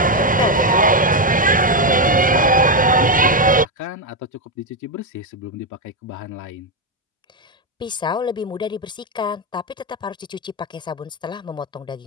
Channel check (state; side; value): normal; both; correlation 0.05